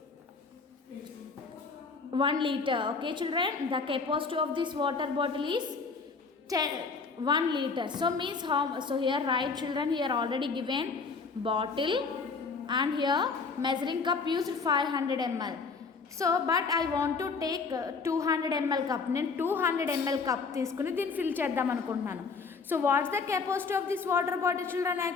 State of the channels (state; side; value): quieter; right; 4.7 dB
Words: 1 liter. Okay, children, the capacity of this water bottle is 1 liter. So means how? So here write, children, here already given bottle and here measuring cup used 500 ml. So but I want to take 200 ml cup. నేను 200 ml cup తీసుకుని దీన్ని fill చేద్దాం అనుకుంటున్నాను. So what's the capacity of this water bottle, children?